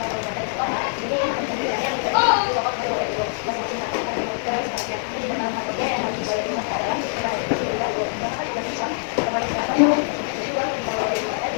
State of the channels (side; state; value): right; silent; digital silence